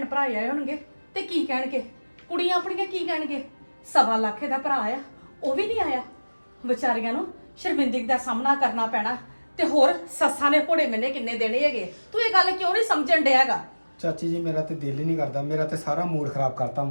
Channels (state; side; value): inverted; both; correlation -1.00